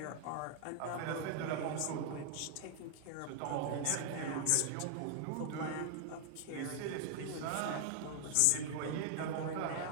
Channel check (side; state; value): both; different; correlation 0.00